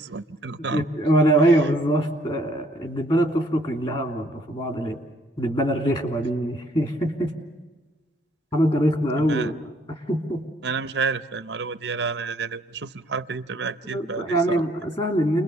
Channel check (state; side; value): normal; both; correlation 0.64